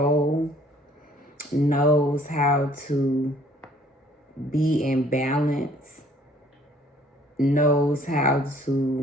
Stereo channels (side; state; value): both; normal; correlation 0.58